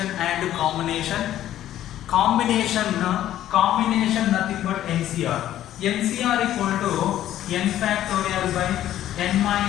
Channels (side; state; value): right; quieter; 12.5 dB